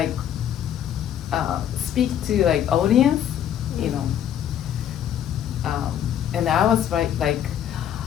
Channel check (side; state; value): right; quieter; 10.1 dB